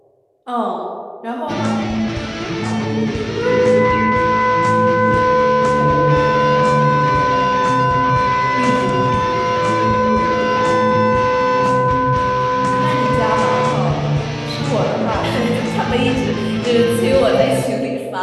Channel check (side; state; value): both; identical; correlation 1.00